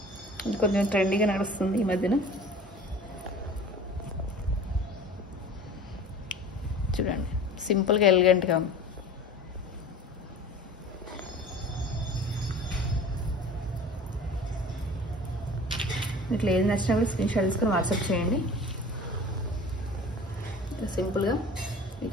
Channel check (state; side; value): normal; both; correlation 0.41